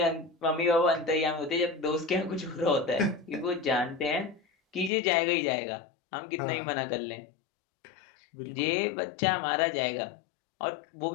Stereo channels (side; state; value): right; drops out; at 4.9 s